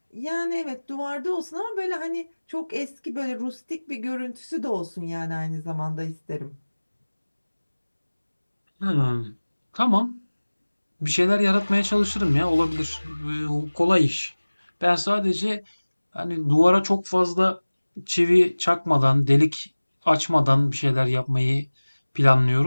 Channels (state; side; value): inverted; both; correlation -1.00